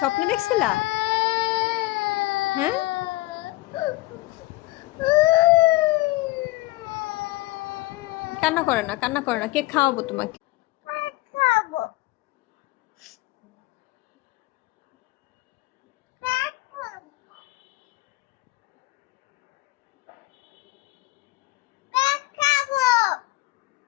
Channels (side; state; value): right; quieter; 19.8 dB